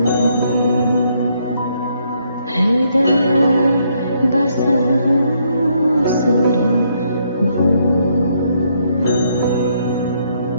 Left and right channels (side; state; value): both; inverted; correlation -0.73